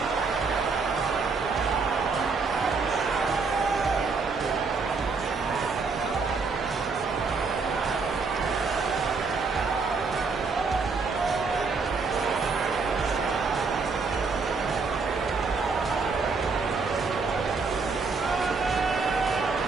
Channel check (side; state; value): left; quieter; 4.5 dB